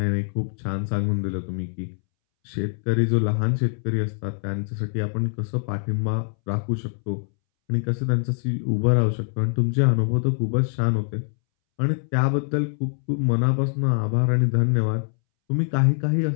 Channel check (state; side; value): silent; right; 63 dB below the other